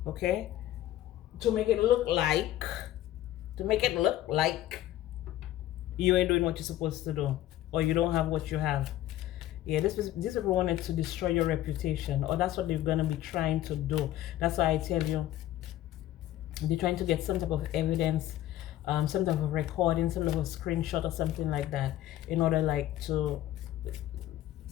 okay? To make it look like you ain't doing what you're supposed to do, or you don't have what you have. Yeah, this people wanted to destroy your reputation, or that's what they're gonna be trying to do. That's why I tell you, they're trying to get some type of evidence, some type of recording, some type of screenshot or something like that, in order like to,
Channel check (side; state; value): right; quieter; 13.8 dB